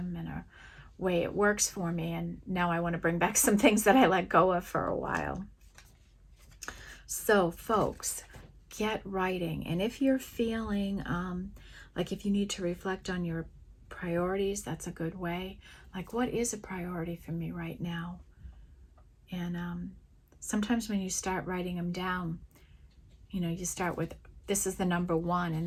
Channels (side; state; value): both; identical; correlation 1.00